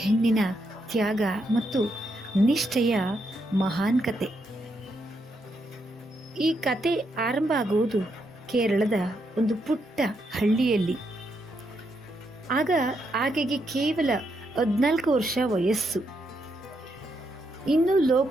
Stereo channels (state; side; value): normal; both; correlation 0.79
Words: ಹೆಣ್ಣಿನ ತ್ಯಾಗ ಮತ್ತು ನಿಷ್ಠೆಯ ಮಹಾನ್ ಕತೆ. ಈ ಕತೆ ಆರಂಭ ಆಗುವುದು ಕೇರಳದ ಒಂದು ಪುಟ್ಟ ಹಳ್ಳಿಯಲ್ಲಿ. ಆಗ ಆಕೆಗೆ ಕೇವಲ 14 ವರ್ಷ ವಯಸ್ಸು. ಇನ್ನೂ